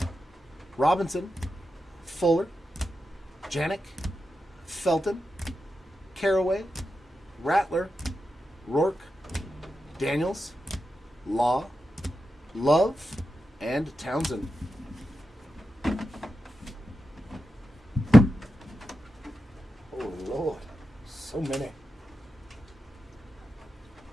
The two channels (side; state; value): both; normal; correlation 0.90